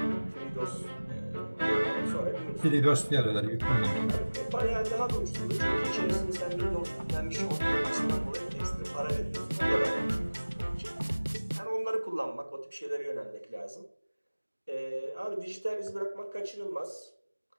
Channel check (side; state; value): both; inverted; correlation -1.00